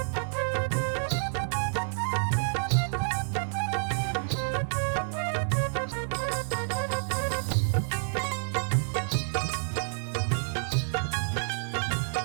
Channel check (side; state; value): left; silent; digital silence